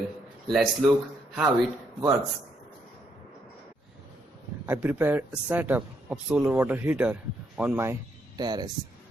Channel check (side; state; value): both; normal; correlation 0.75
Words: Let's look how it works. I prepared a setup of solar water heater on my terrace.